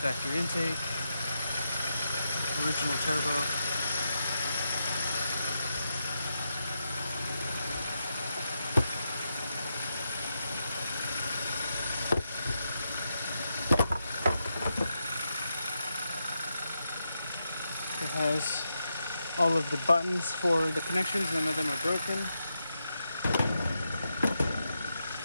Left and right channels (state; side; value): inverted; both; correlation -0.85